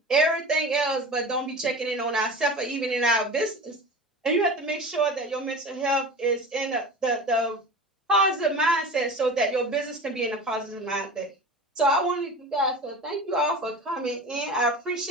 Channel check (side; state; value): both; normal; correlation 0.33